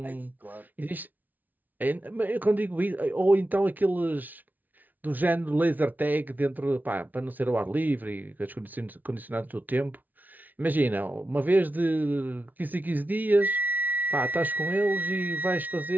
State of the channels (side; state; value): left; late; 0.081 ms